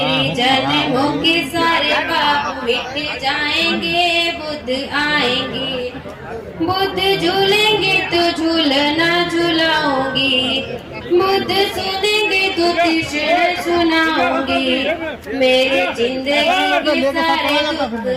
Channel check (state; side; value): identical; both; correlation 1.00